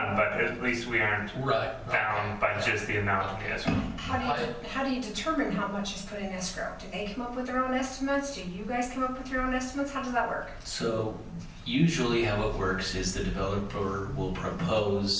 but at least we aren't Right. bound by just the amount of the escrow. How do you determine how much is put in escrow? Do they come up with their own estimates? Do you guys come up with your own estimates? How does that work? So usually how it works is the developer will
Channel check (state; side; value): identical; both; correlation 1.00